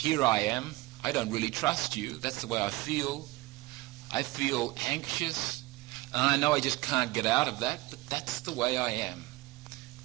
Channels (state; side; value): quieter; left; 20.7 dB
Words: I am. I don't really trust you. That's the way I feel. I feel anxious. And I know I just can't get out of that, but that's the way I am.